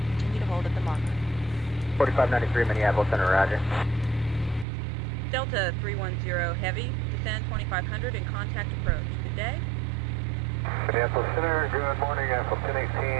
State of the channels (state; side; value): drops out; left; at 4.7 s